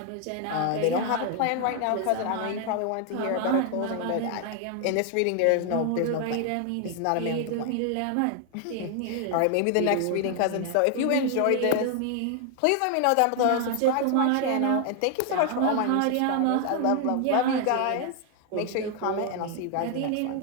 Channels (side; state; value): both; different; correlation 0.00